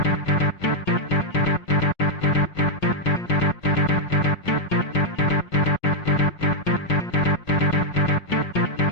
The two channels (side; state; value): right; late; 5.5 ms